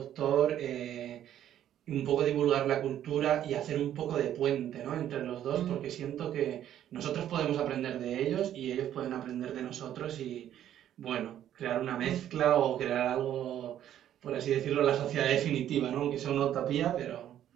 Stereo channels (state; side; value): quieter; left; 11.1 dB